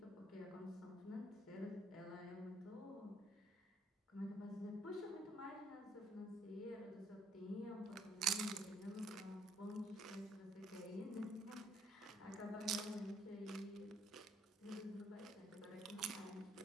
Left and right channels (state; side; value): normal; both; correlation 0.66